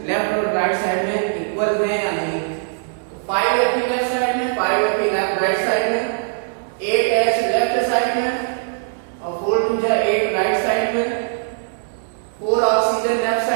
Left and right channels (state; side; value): silent; left; digital silence